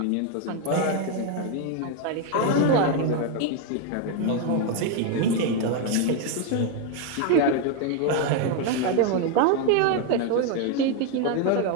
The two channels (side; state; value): both; different; correlation 0.01